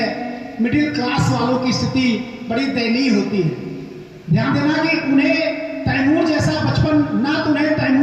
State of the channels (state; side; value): identical; both; correlation 1.00